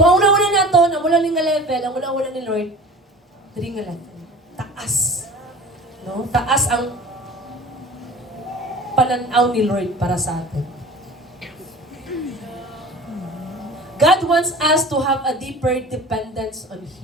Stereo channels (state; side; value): normal; both; correlation 0.41